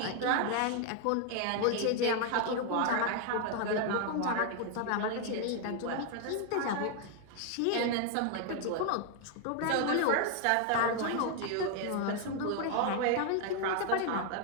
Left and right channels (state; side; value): different; both; correlation 0.00